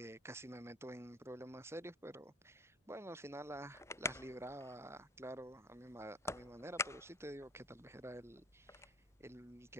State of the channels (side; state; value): both; normal; correlation 0.41